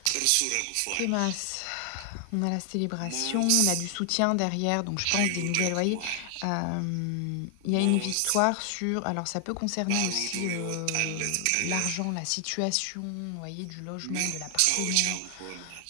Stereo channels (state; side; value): different; both; correlation 0.00